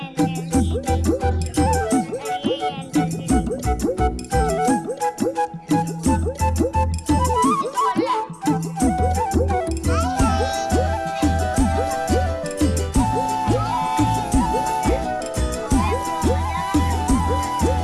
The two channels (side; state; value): both; identical; correlation 1.00